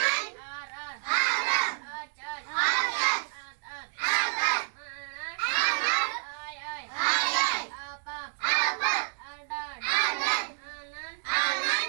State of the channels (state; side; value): silent; left; digital silence